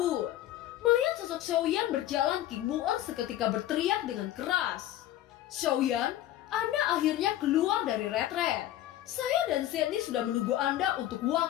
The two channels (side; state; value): right; quieter; 13.2 dB